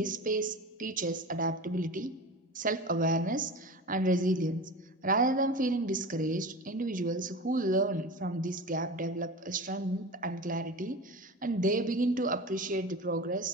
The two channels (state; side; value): normal; both; correlation 0.31